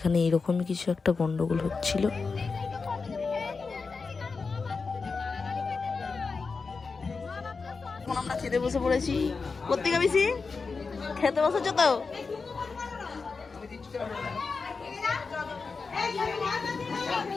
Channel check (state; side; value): quieter; right; 4.6 dB